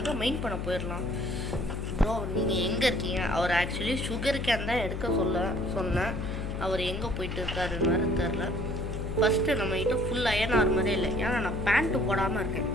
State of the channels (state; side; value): noise; left; hum, 4 dB below the sound